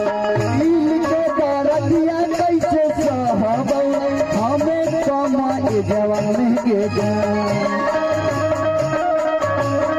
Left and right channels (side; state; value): both; identical; correlation 1.00